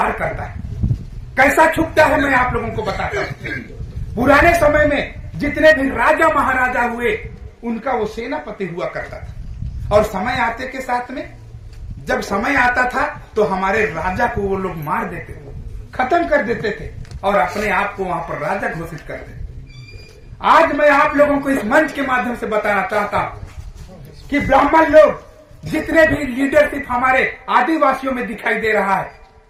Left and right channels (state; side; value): identical; both; correlation 1.00